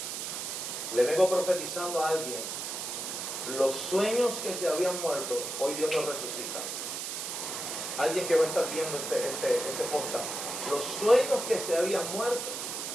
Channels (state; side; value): noise; right; hiss, 5 dB below the sound